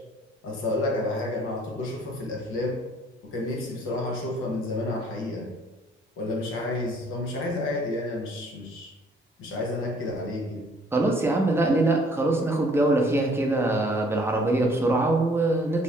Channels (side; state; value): both; normal; correlation 0.59